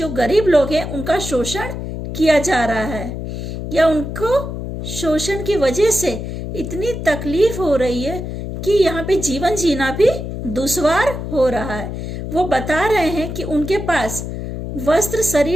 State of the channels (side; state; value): left; noise; hum, 6 dB below the sound